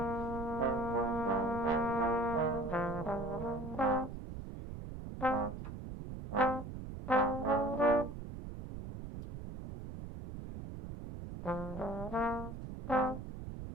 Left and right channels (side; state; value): right; noise; rumble, 9 dB below the sound